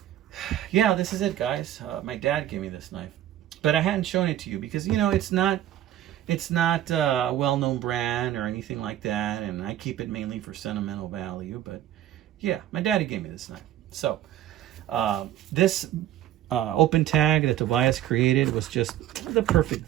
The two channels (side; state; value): left; quieter; 12.4 dB